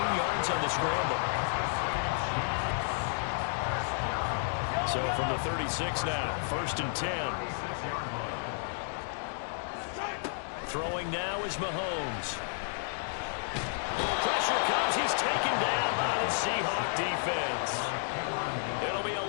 yards on the scramble. So from the 36 now, 1st and 10. Throwing now is Mahomes. Pressure comes, he's taken down by the Seahawk defense. It'll be a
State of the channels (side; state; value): right; silent; digital silence